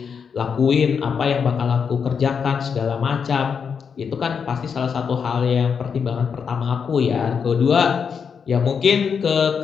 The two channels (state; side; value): quieter; right; 6.5 dB